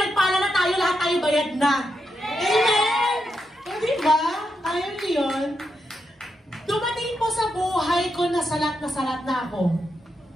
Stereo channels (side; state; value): both; normal; correlation 0.84